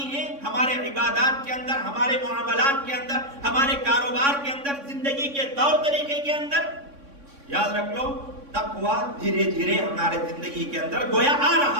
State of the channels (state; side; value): late; left; 3.6 ms